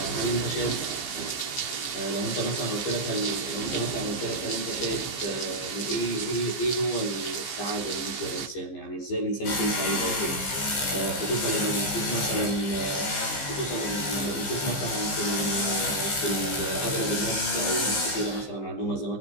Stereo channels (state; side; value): late; right; 15 ms